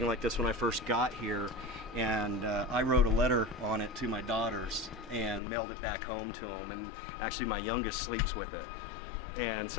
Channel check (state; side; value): drops out; right; at 5.4 s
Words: like this when I first got here, and I wrote a letter on it to my daughters and mailed it back home to them. And actually, my youngest sleeps with it. And